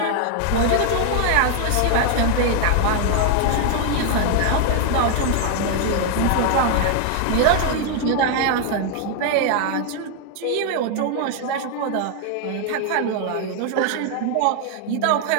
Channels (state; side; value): different; both; correlation 0.00